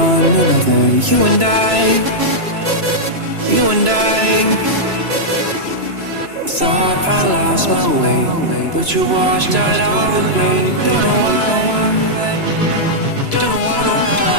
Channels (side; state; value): left; late; 3.0 ms